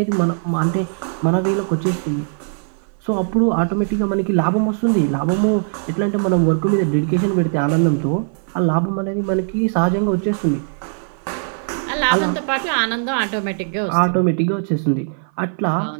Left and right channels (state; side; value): silent; left; 57 dB below the other